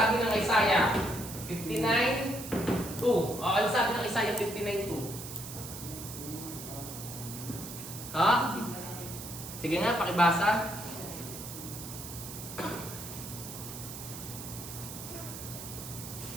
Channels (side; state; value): right; noise; hiss, 10 dB below the sound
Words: ng Isaiah? 59:2. Ano sabi ng Isaiah 59:2? Ha? Sige nga, pakibasa.